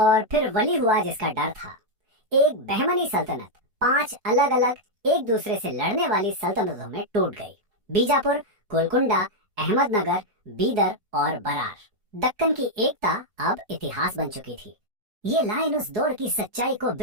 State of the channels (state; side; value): late; left; 4.7 ms